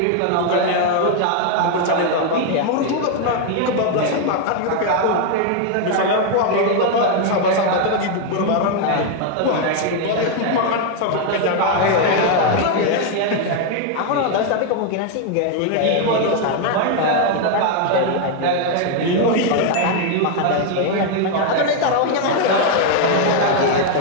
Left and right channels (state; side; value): different; both; correlation 0.01